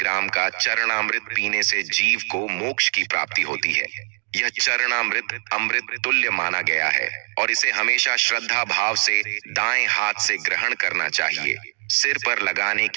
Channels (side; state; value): left; silent; digital silence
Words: का चरणामृत पीने से जीव को मोक्ष की प्राप्ति होती है। यह चरणामृत अमृत तुल्य माना गया है और इसे हमेशा श्रद्धा भाव से दाएं हाथ से ग्रहण करना चाहिए। सिर पर लगाने